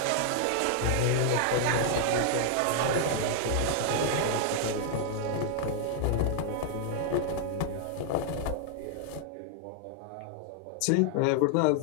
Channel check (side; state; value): both; different; correlation 0.00